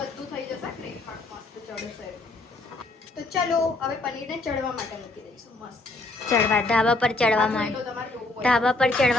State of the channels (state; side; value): quieter; right; 3.1 dB